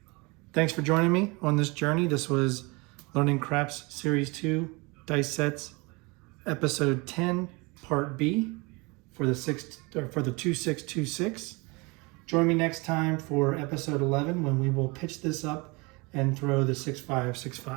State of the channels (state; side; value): quieter; left; 26.9 dB